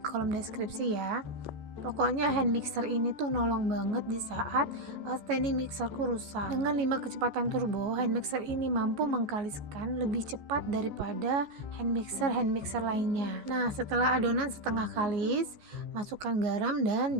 deskripsi ya. Pokoknya hand mixer ini tuh nolong banget di saat standing mixerku rusak. Dengan 5 kecepatan turbo, hand mixer ini mampu mengkaliskan lebih cepat daripada hand mixer lainnya. Nah, setelah adonan setengah kalis, masukkan garam dan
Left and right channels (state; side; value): late; left; 14 ms